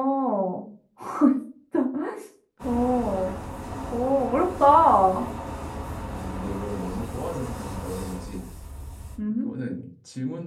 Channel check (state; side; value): identical; both; correlation 1.00